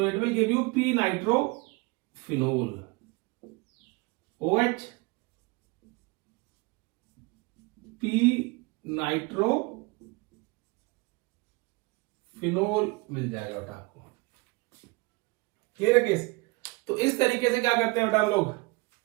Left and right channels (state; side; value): quieter; left; 25.6 dB